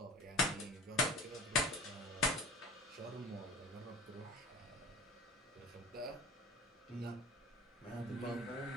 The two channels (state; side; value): normal; both; correlation 0.38